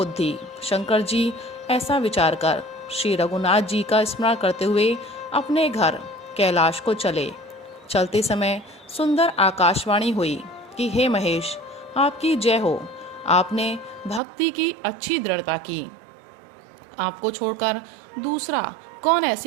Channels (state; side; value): drops out; left; at 14.2 s